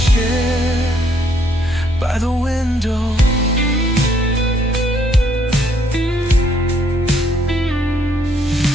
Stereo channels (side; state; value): both; normal; correlation 0.68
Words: by the window.